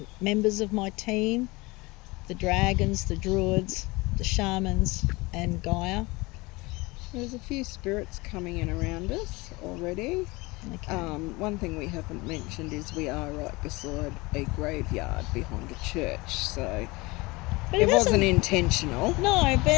members of my team, the dragons, the druids, the shamans, and Gaia. There's a few spirits coming in around us already. Okay. One thing we haven't mentioned is we are right beside a graveyard behind a church, so it wasn't intentional. No,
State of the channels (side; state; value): right; quieter; 23.5 dB